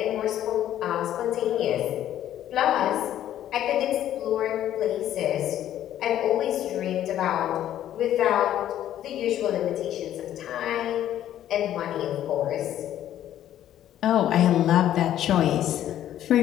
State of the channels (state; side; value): quieter; right; 11.7 dB